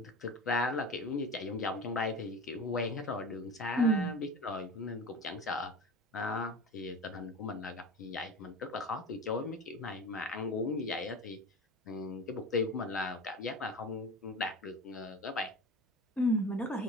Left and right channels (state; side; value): normal; both; correlation 0.32